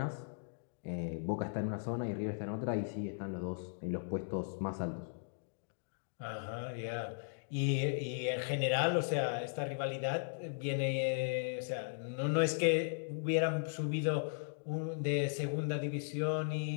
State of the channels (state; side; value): silent; right; digital silence